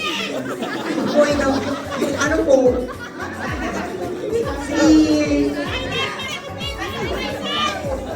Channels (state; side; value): identical; both; correlation 1.00